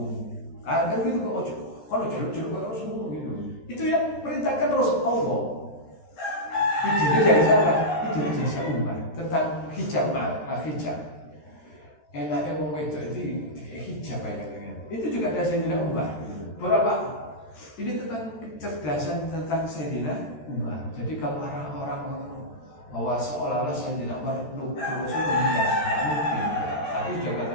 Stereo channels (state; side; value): late; right; 13 ms